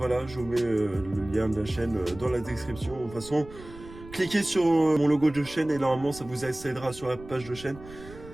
je vous mets le lien de la chaîne dans la description. De toute façon, cliquez sur mon logo de chaîne et normalement ça vous accédera sur la page de chaîne.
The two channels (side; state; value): right; noise; rumble, 17 dB below the sound